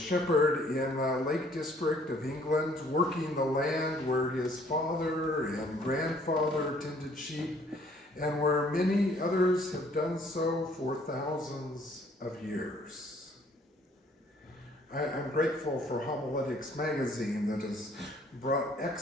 in the Lake District of England, working the land where his father and grandfather tended sheep, and where many others have done so for thousands of years. I'm grateful for Homiletics magazine that has brought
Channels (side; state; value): both; normal; correlation 0.60